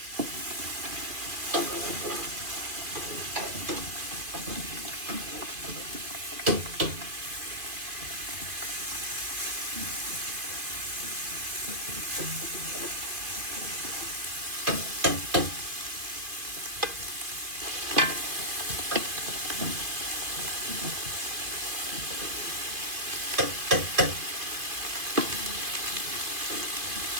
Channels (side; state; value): left; late; 2.5 ms